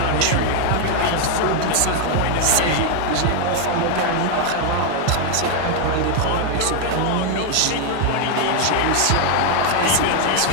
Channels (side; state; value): both; different; correlation 0.00